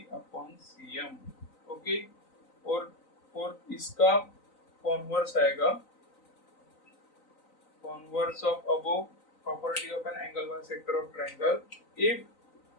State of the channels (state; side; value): late; right; 3.9 ms